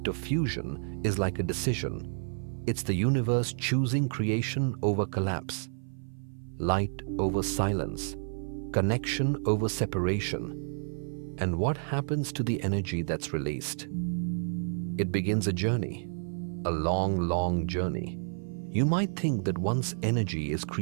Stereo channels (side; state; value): left; silent; 57 dB below the other